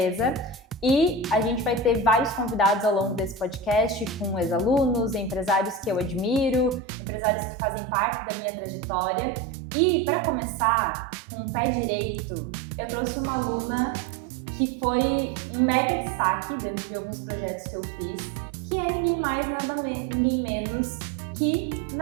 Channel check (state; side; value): drops out; left; at 6.8 s